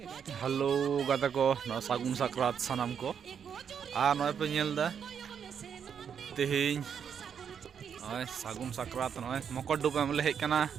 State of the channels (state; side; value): quieter; left; 7.6 dB